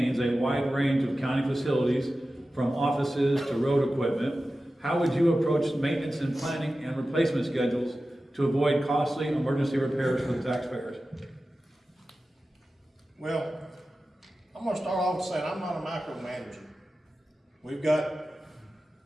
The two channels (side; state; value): both; normal; correlation 0.94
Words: a wide range of county facilities, from offices to road equipment. How would you approach maintenance and planning and replacement schedules to avoid costly emergency repairs for the taxpayers? Well, I'm gonna start off saying I'm not a micromanager. We've got